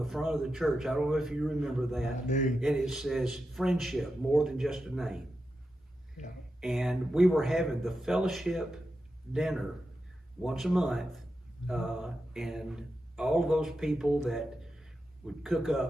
front of the church. I don't know if you remember that. And it says, friendship, more than just a name. And we were having the fellowship dinner once a month, and all of those people that would cook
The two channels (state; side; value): normal; both; correlation 0.89